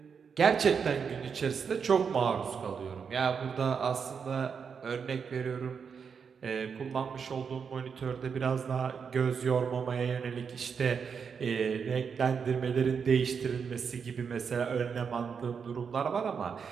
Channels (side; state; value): left; quieter; 6.3 dB